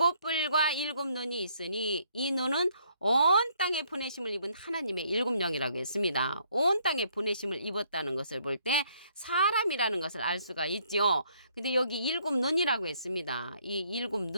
7눈이 있으니 이 눈은 온 땅에 보내심을 입은 하나님의 7영이라고 했습니다. 온 땅에 보내심을 입었다는 것을 볼 때 사람이라는 것을 알 수가 있죠. 근데 여기 7눈이라고 했습니다. 이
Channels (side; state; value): both; inverted; correlation -0.67